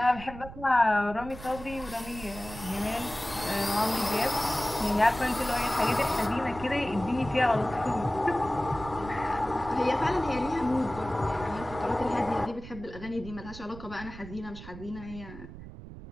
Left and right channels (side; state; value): right; noise; rumble, 14 dB below the sound